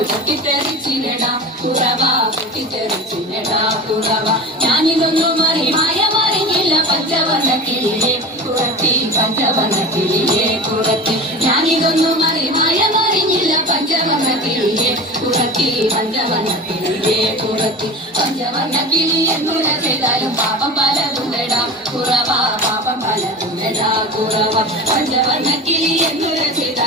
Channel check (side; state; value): both; normal; correlation 0.32